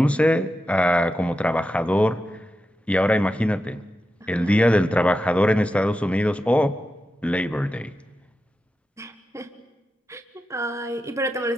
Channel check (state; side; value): normal; both; correlation 0.90